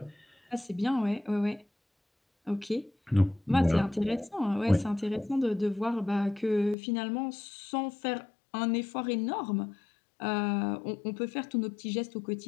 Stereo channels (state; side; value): drops out; right; at 6.8 s